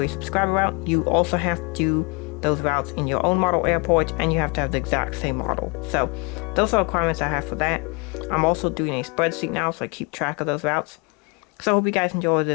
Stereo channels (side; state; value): right; quieter; 31.8 dB